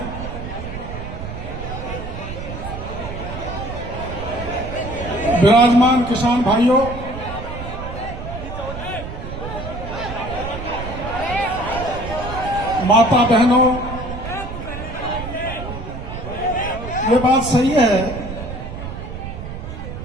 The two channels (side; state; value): right; noise; rumble, 8 dB below the sound